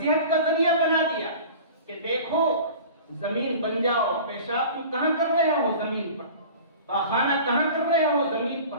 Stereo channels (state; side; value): inverted; both; correlation -0.40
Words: کا ذریعہ بنا دیا کہ دیکھو زمین بن جاؤ، پیشاب تم کہاں کر رہے ہو؟ زمین پر۔ پاخانہ کہاں کر رہے ہو؟ زمین